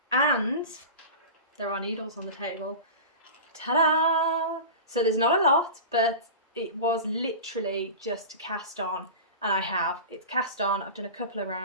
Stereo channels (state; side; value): inverted; both; correlation -0.30